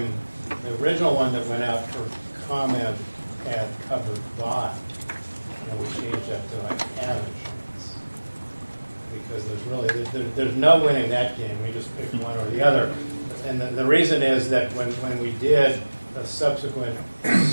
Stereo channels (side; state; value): both; inverted; correlation -1.00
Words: the original one that went out for comment had covered by. And we changed that to like have insurance. Because there's no winning that game, we just picked one or the other. And the reason is that when we did a subsequent